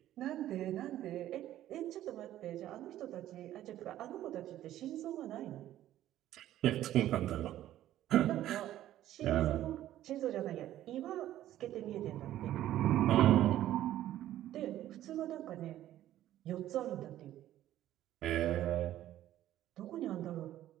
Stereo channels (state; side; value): quieter; left; 13.1 dB